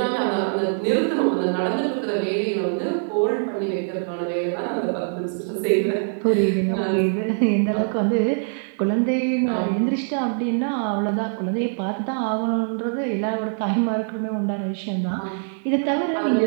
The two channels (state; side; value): silent; left; digital silence